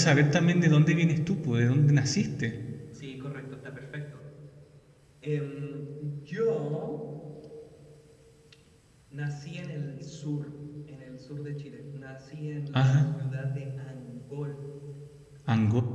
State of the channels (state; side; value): identical; both; correlation 1.00